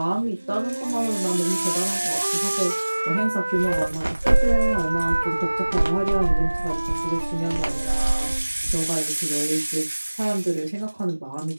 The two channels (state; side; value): inverted; both; correlation -1.00